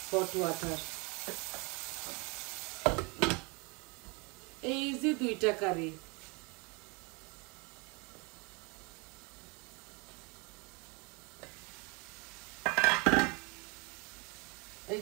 হট ওয়াটার। এই যে 2টা কারি। এই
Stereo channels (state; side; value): quieter; left; 30.3 dB